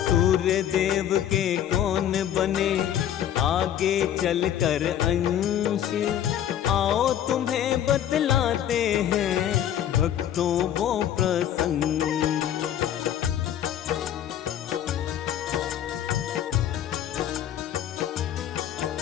देव के कौन बने आगे चलकर अंश। आओ तुम्हें बतलाते हैं भक्तों वो प्रसंग।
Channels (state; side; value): quieter; right; 10.6 dB